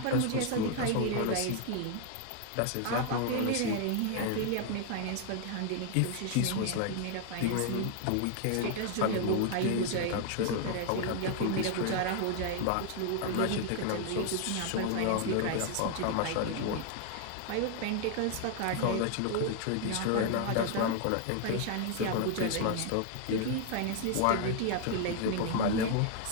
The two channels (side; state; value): both; different; correlation 0.00